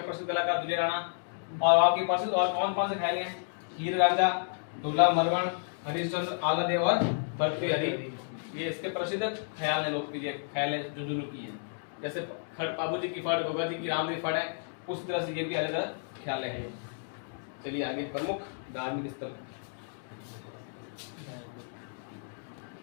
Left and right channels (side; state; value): right; silent; digital silence